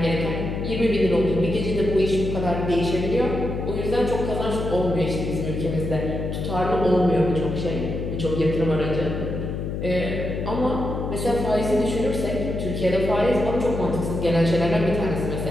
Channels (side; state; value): left; noise; hum, 4 dB below the sound